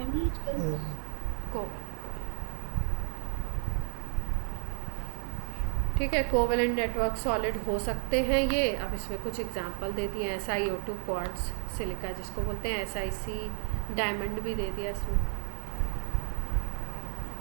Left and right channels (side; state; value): left; silent; 56 dB below the other